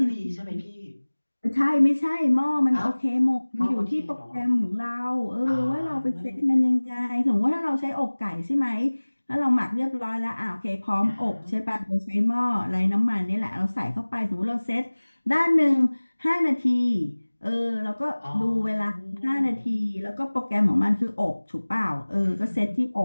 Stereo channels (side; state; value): both; inverted; correlation -1.00